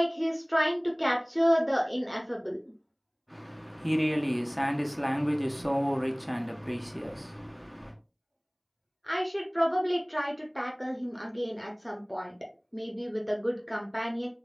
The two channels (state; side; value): identical; both; correlation 1.00